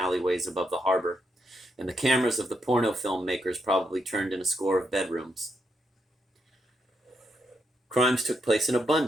above the harbor, and the cameras of the porno film makers probably turned in a score of bedrooms. Crimes took place in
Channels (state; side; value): normal; both; correlation 0.80